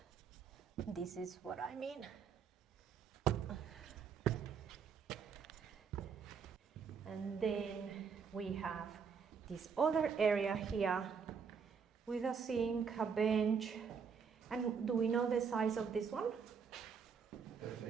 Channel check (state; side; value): quieter; left; 6.3 dB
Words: This is what I mean. And then we have this other area here with a sink, a bench. And do we know the size of this one?